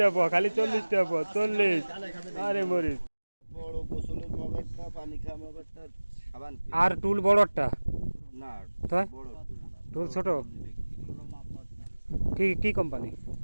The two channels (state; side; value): inverted; both; correlation -1.00